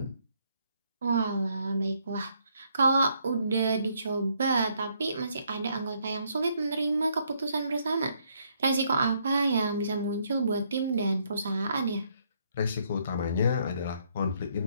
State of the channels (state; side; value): inverted; both; correlation -0.71